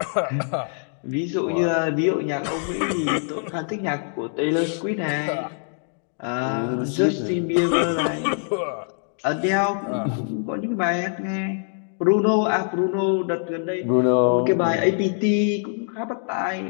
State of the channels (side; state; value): right; silent; 59 dB below the other